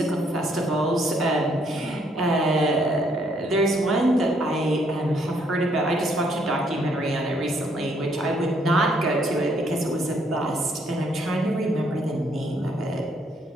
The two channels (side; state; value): both; normal; correlation 0.69